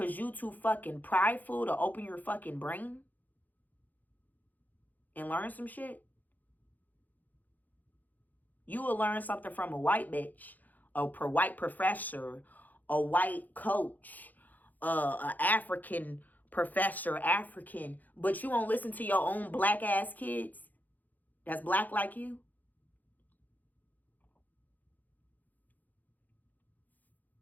you too fucking prideful to open your fucking brain and learn some shit? You will learn something from a white bitch, a white professor, a white coach, an African professor, African, but you won't listen to your own black ass kids that's black like you?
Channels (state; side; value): late; right; 0.083 ms